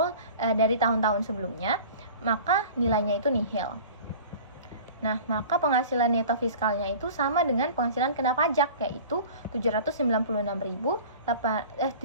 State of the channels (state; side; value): inverted; both; correlation -0.41